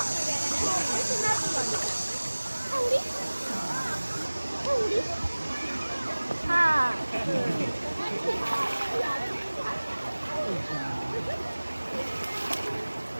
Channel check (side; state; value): both; inverted; correlation -1.00